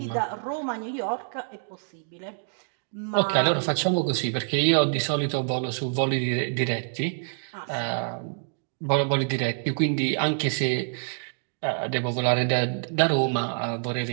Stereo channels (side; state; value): left; silent; digital silence